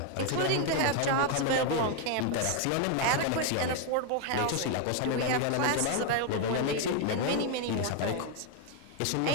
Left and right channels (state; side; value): different; both; correlation 0.01